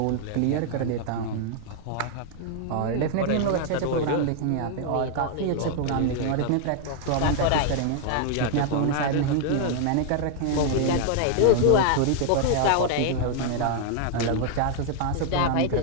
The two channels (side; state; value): both; different; correlation 0.00